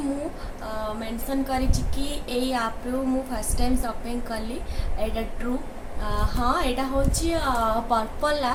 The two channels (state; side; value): identical; both; correlation 1.00